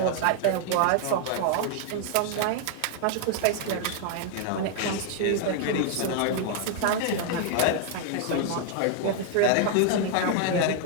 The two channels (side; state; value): both; different; correlation 0.00